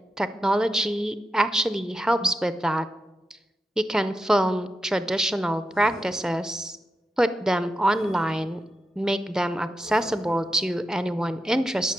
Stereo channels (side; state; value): both; normal; correlation 0.88